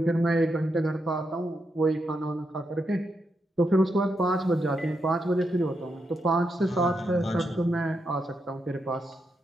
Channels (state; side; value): normal; both; correlation 0.83